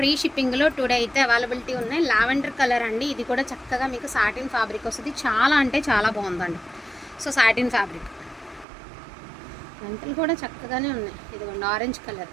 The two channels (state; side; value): drops out; left; at 8.7 s